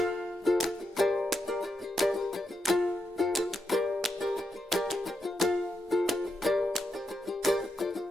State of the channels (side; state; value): both; normal; correlation 0.84